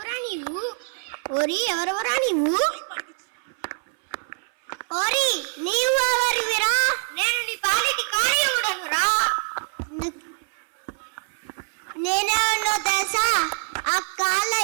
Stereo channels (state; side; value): silent; left; 62 dB below the other